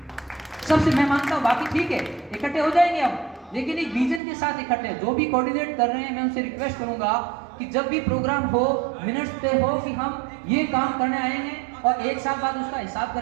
सबसे मैं मानता हूं। बाकी ठीक है, इकट्ठे हो जाएंगे हम, लेकिन एक विजन के साथ इकट्ठे। जो भी कोऑर्डिनेट कर रहे हैं मैं उनसे रिक्वेस्ट करूंगा कि जब भी प्रोग्राम हो, मिनट्स तय हो कि हम ये काम करने आए हैं, और 1 साल बाद उसका हिसाब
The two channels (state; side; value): drops out; left; at 4.2 s